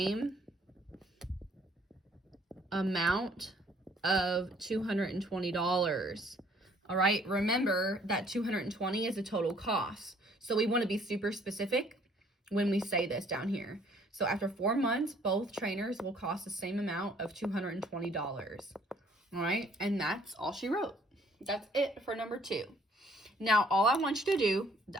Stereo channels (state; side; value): normal; both; correlation 0.61